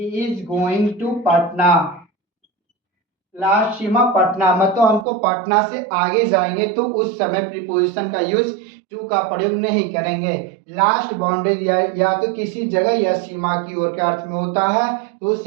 is going to Patna. Last सीमा पटना, मतलब हमको पटना से आगे जाएंगे तो उस समय प्रीपोजिशन का यूज टू का प्रयोग नहीं करेंगे। लास्ट बाउंड्री या तो किसी जगह या सीमा की ओर के अर्थ में होता है, तो उस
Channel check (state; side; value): drops out; left; at 5.1 s